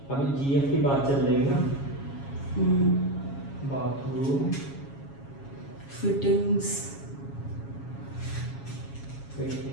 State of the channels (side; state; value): right; late; 7.3 ms